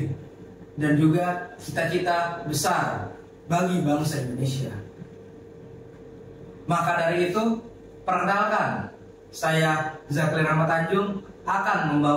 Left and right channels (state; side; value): identical; both; correlation 1.00